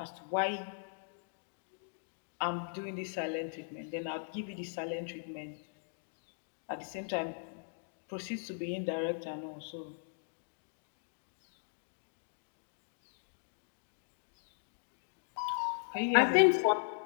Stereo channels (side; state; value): right; silent; digital silence